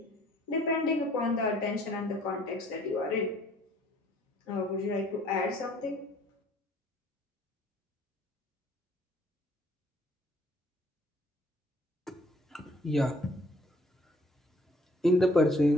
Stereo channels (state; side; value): normal; both; correlation 0.58